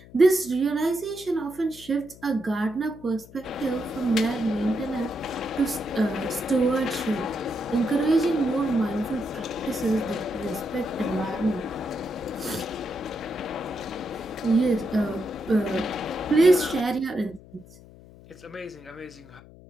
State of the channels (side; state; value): left; noise; hum, 21 dB below the sound